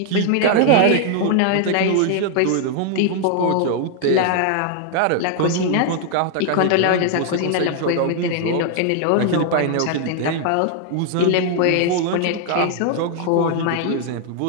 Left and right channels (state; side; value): different; both; correlation 0.00